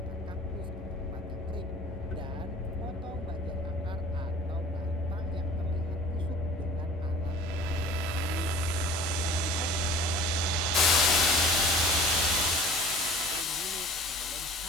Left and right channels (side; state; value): both; normal; correlation 0.46